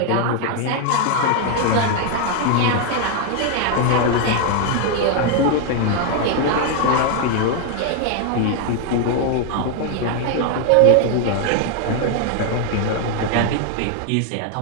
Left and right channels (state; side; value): different; both; correlation 0.01